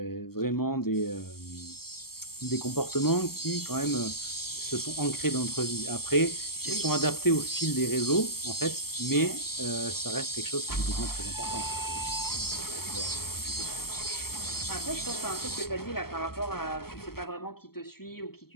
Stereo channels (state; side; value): late; right; 0.95 ms